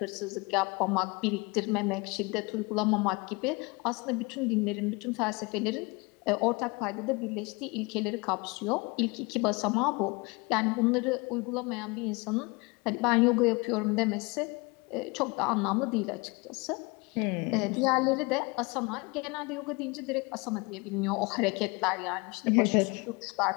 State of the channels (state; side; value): quieter; right; 27.0 dB